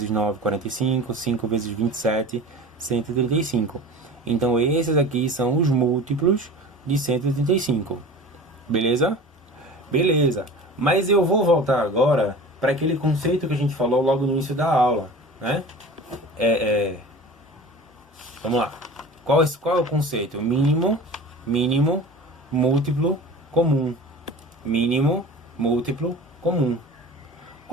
9, 45. 5 vezes 27, 135. Então esses aqui são os múltiplos de 135. Beleza? Beleza. Mas eu vou voltar agora para aquele conceito que a gente falou logo no início da aula, né? Vamos lá. Qual é o conceito? Mínimo, múltiplo, comum. Mínimo, múltiplo, comum.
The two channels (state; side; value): normal; both; correlation 0.38